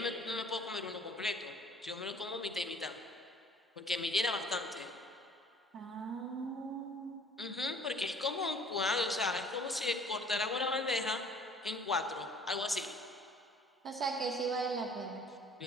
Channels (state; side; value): normal; both; correlation 0.53